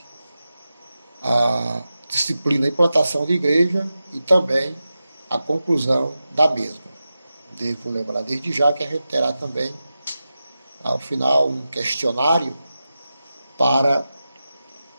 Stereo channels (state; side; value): inverted; both; correlation -0.92